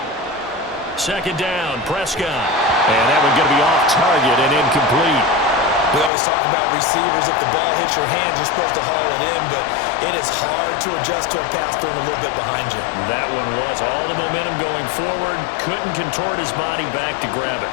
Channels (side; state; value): right; drops out; at 6.1 s